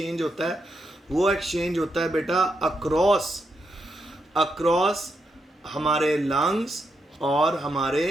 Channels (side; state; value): both; normal; correlation 0.83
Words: होता है वो एक्सचेंज होता है बेटा अक्रॉस हमारे लंग्स और हमारे